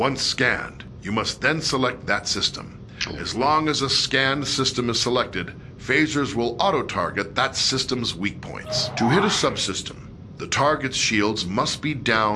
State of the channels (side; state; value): both; identical; correlation 1.00